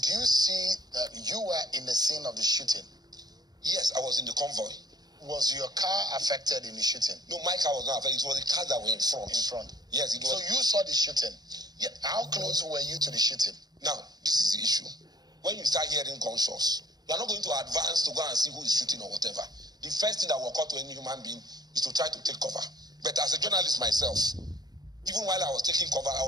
Did you see that you were in the scene of the shooting? Yes, I was in the convoy. Was your car affected in the shooting? No, my car was not affected. It was the cars that were in front. In front? Yes, it was. So you saw the shooting? Yeah. How close were you to the shooting? Now, this is the issue. When you start hearing gunshots, you are not going to advance to go and see who is shooting or whatever. The first thing that will occur to any human being is to try to take cover. But as a journalist myself, even while I was taking cover, I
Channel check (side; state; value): left; late; 0.19 ms